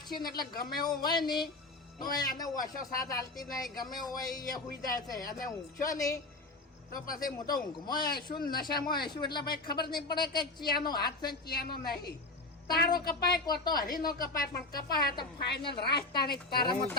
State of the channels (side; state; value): right; quieter; 3.2 dB